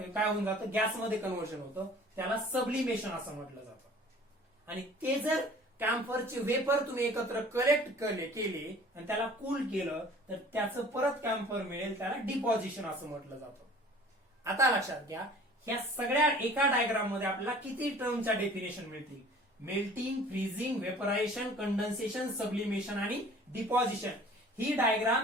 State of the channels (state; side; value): normal; both; correlation 0.48